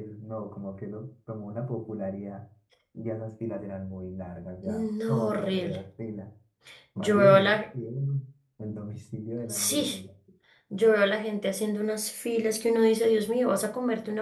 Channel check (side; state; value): both; identical; correlation 1.00